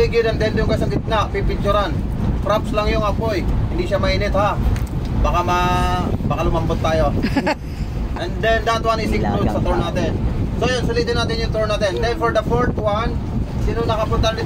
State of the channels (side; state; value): both; identical; correlation 1.00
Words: and then yung sa gitna, pipicturan. Props lang yung apoy, hindi siya mainit ha. Baka lumambot tayo. And then that one is included sa tour natin. So yun, sulitin natin yung tour natin. Then for the fourth one, sino nakapunta